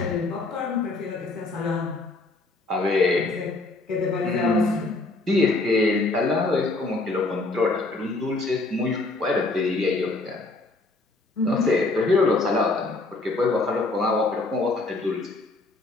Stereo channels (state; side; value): quieter; right; 3.2 dB